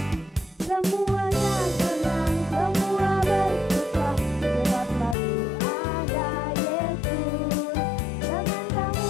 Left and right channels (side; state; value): right; drops out; at 5.2 s